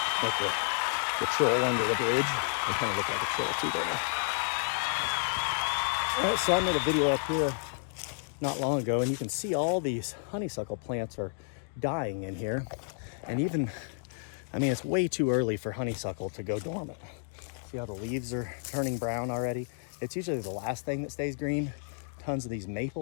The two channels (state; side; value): silent; right; digital silence